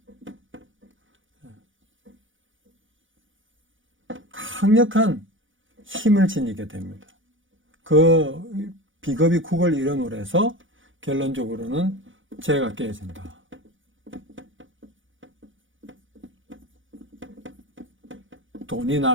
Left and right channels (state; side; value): late; left; 0.57 ms